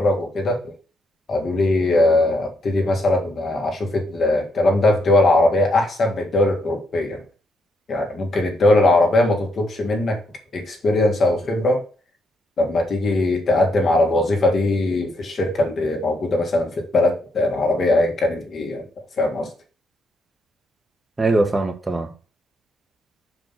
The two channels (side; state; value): both; normal; correlation 0.76